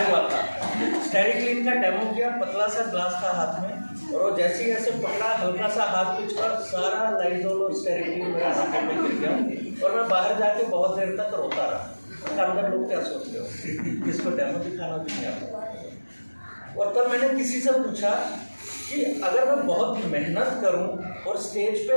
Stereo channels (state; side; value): inverted; both; correlation -1.00